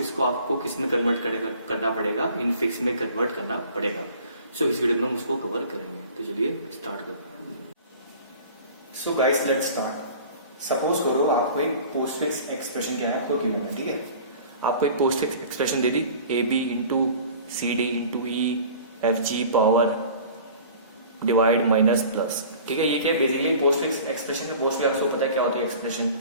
को आपको किस में कन्वर्ट करना पड़ेगा, इनफिक्स में कन्वर्ट करना पड़ेगा। सो इस वीडियो में हम उसको कवर करेंगे। तो चलिए स्टार्ट करो। So guys let's start. Suppose करो आपको एक पोस्ट फिक्स एक्सप्रेशन क्या है आपको गिवन है, ठीक है। आपको एक पोस्ट फिक्स एक्सप्रेशन दे दी, A B into C D into E F G power divide minus plus, ठीक है। ये क्या है बेसिकली पोस्ट फिक्स एक्सप्रेशन में मोस्टली आपको पता है क्या होती है एक्सप्रेशन,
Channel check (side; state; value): both; inverted; correlation -0.44